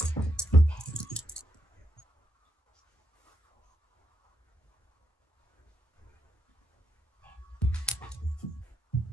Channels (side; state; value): both; normal; correlation 0.79